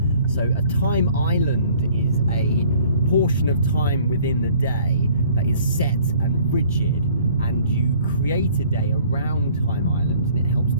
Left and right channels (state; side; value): inverted; both; correlation -0.56